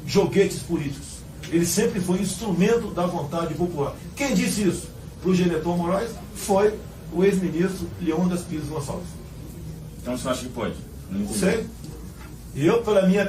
joguetes políticos. Ele sempre foi instrumento da vontade popular. Quem disse isso para o Geneton Moraes foi o ex-ministro Leônidas Pires Gonçalves. Então você acha que pode? Não sei. E eu, pela minha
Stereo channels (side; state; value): both; identical; correlation 1.00